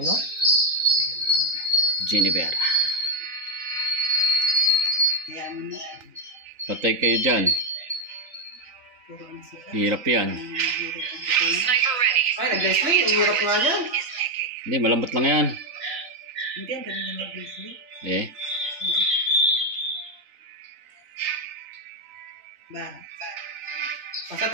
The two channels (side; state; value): left; late; 3.8 ms